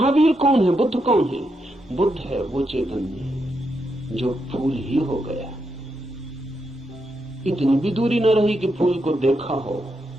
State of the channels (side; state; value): both; normal; correlation 0.82